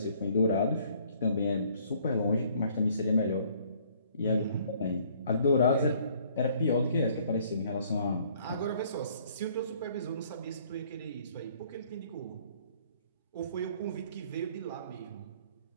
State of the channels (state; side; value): inverted; both; correlation -0.60